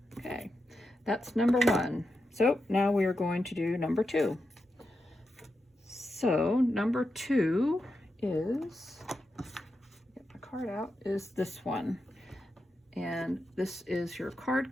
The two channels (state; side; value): normal; both; correlation 0.88